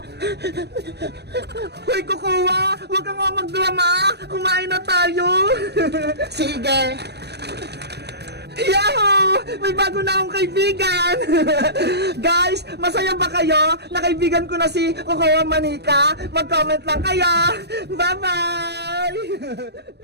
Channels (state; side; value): late; left; 0.48 ms